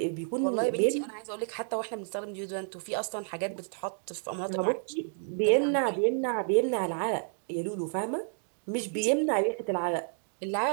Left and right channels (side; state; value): left; silent; 57 dB below the other